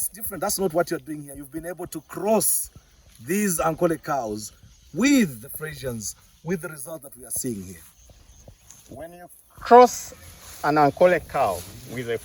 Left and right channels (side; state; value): both; identical; correlation 1.00